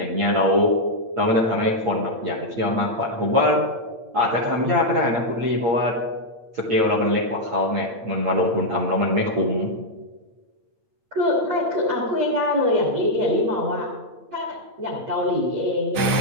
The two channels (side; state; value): left; late; 8.8 ms